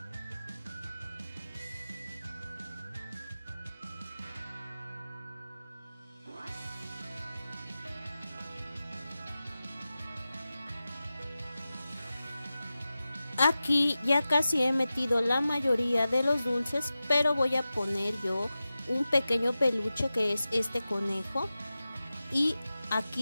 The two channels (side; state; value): both; inverted; correlation -0.94